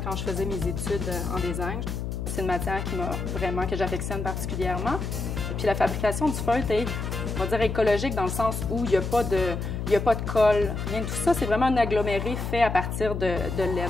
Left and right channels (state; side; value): noise; left; hum, 4 dB below the sound